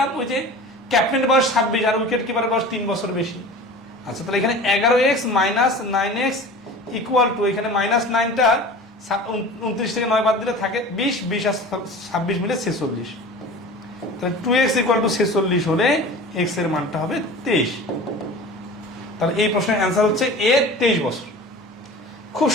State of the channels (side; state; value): both; normal; correlation 0.38